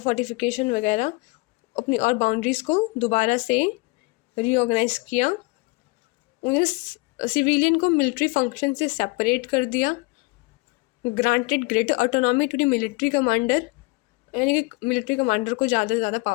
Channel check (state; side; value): quieter; right; 25.8 dB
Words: वगैरह अपनी और बाउंड्रीज़ को दोबारा से रीऑर्गेनाइज किया। उन्हें सिविलियन को मिलिट्री फंक्शन से सेपरेट कर दिया। Granted greater autonomy to the military commander, यानी कि मिलिट्री कमांडर को ज़्यादा से ज़्यादा